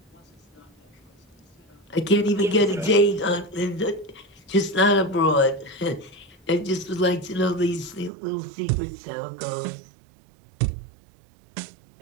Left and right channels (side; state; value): left; drops out; at 8.1 s